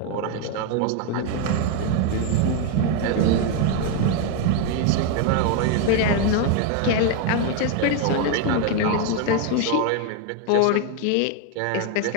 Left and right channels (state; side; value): different; both; correlation 0.01